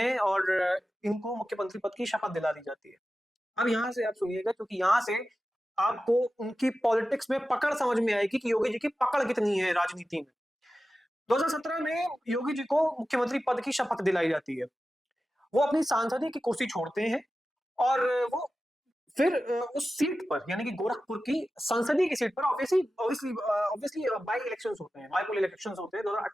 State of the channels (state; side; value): normal; both; correlation 0.94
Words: और इनको मुख्यमंत्री पद की शपथ दिला दी जाती है। अब यहां से आप सुनिएगा, क्योंकि यहां से आपको उनकी पॉलिटिक्स में पकड़ समझ में आएगी कि योगी जी की पकड़ कितनी है राजनीति में। 2017 में योगी जी को मुख्यमंत्री पद की शपथ दिलाई जाती है। वो अपनी सांसदीय की कुर्सी छोड़ते हैं और वो फिर उस सीट पर, यानी कि गोरखपुर की संसदीय की सीट पर, ऑब्वियसली बाई इलेक्शंस होते हैं, बाईपोल इलेक्शंस होते हैं